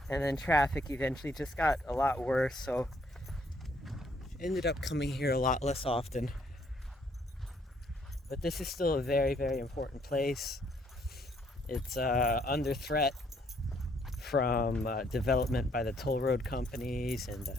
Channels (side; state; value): both; normal; correlation 0.67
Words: And then traffic eventually just got a lot worse, so ended up coming here a lot less often. But this is still a very, very important place. It's under threat from development by the toll road companies and